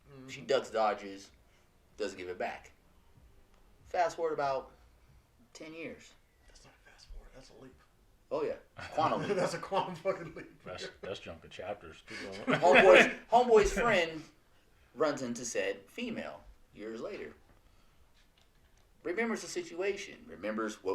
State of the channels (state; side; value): identical; both; correlation 1.00